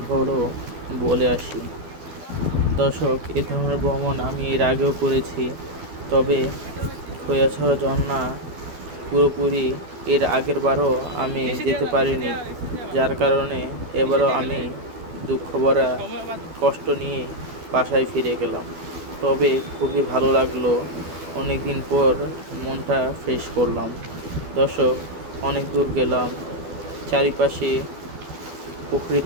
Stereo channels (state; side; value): late; left; 12 ms